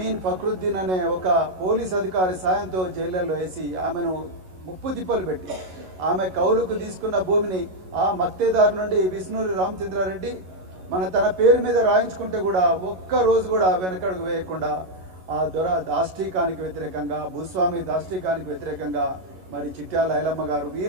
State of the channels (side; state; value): left; late; 11 ms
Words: ఫక్రుద్దీన్ అనే ఒక పోలీస్ అధికారి సాయంతో జైళ్ళల్లో వేసి ఆమెను ముప్పు తిప్పలు పెట్టి ఆమె కౌలుకు తీసుకున్న భూమిని ఆ మత్తేదారు నుండి విష్ణూరి రామచంద్రారెడ్డి తన పేరు మీద రాయించుకుంటే కూడా ఒక్క రోజు కూడా వెనకడుగు వేయకుండా ఆ దొర దాష్టీకానికి వ్యతిరేకంగా, భూస్వామి దాష్టీకానికి వ్యతిరేకంగా మరి చిట్యాల ఐలమ్మ గారు